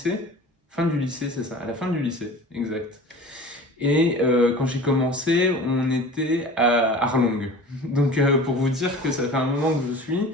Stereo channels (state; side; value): normal; both; correlation 0.39